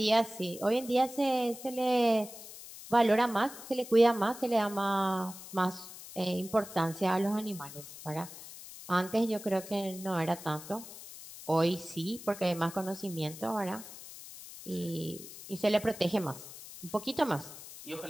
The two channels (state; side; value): noise; left; hiss, 14 dB below the sound